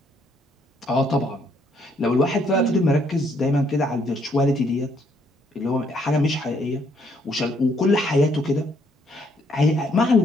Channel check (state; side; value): normal; both; correlation 0.69